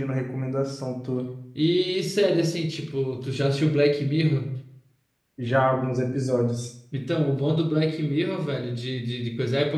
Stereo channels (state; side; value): identical; both; correlation 1.00